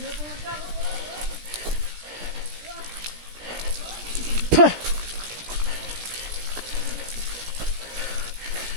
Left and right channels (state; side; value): late; left; 17 ms